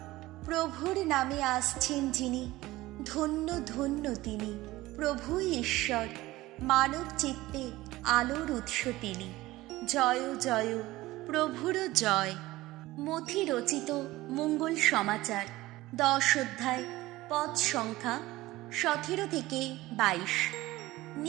প্রভুর নামে আসছেন যিনি, ধন্য ধন্য তিনি। প্রভুই ঈশ্বর, মানব চিত্তে আলোর উৎস তিনি। জয় জয় প্রভুর জয়। মথি রচিত মঙ্গল সমাচার 10 অধ্যায়, পদ সংখ্যা 17 থেকে 22।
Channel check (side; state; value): left; quieter; 18.1 dB